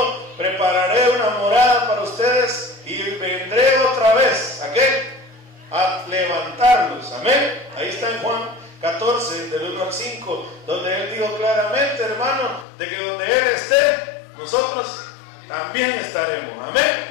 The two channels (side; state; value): right; drops out; at 12.7 s